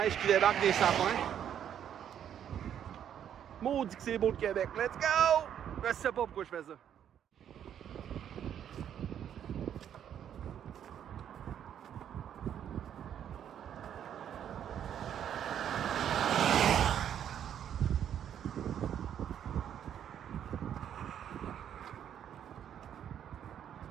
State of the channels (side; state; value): left; quieter; 9.5 dB